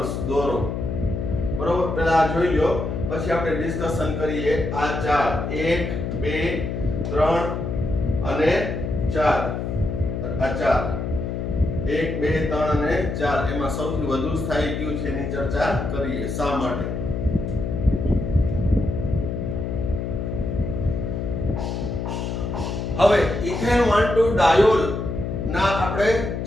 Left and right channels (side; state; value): left; noise; hum, 3 dB below the sound